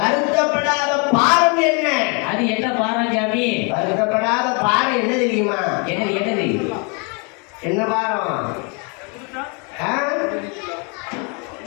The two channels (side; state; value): right; quieter; 34.1 dB